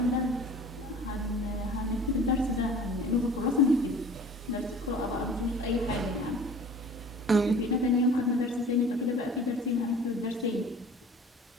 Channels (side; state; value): both; normal; correlation 0.44